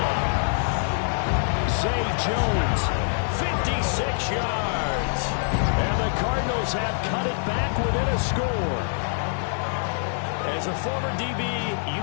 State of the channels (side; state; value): right; silent; digital silence